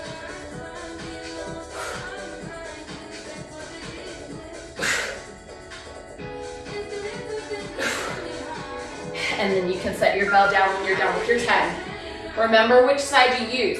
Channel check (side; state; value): both; identical; correlation 1.00